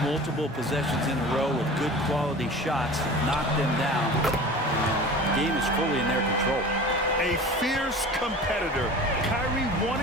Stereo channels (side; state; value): both; normal; correlation 0.38